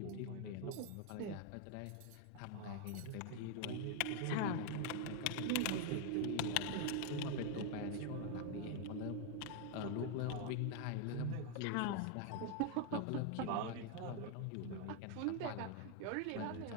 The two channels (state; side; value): different; both; correlation 0.01